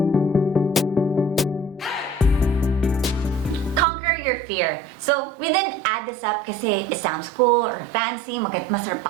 Your fear. So, we didn't add this up kasi it sounds cool or fancy, masarap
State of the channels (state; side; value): drops out; left; at 3.9 s